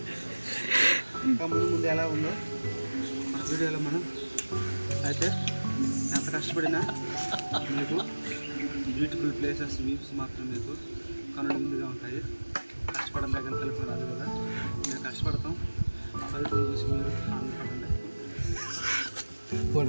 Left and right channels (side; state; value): both; inverted; correlation -1.00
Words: ఇంకా ముందు ఎలా ఉందో మన వీడియోలో మనం అయితే ఎంత కష్టపడినా మీకు బ్యూటిఫుల్ ప్లేసెస్ వ్యూస్ మాత్రం మీకు కనుల ముందుగా ఉంటాయి. కష్టపడిన దగ్గర కలిపి రాదు కదా, మేము కష్టపడతాం, ఫలితం చూసి మీరు ఆనందపడండి.